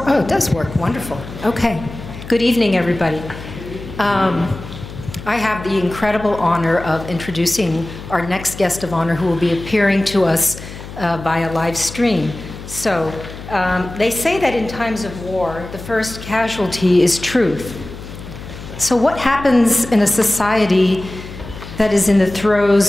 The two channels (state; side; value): noise; left; hum, 13 dB below the sound